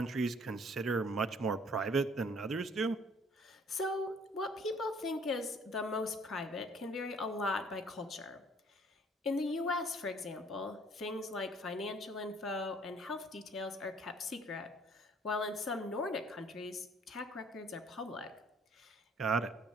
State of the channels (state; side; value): normal; both; correlation 0.58